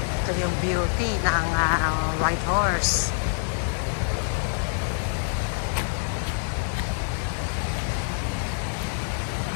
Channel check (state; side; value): silent; right; digital silence